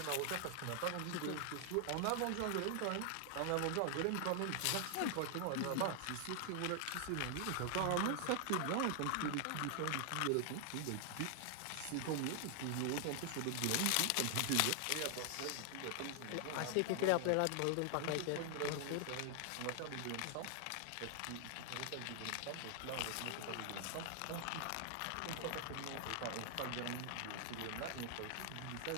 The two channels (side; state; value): both; different; correlation 0.00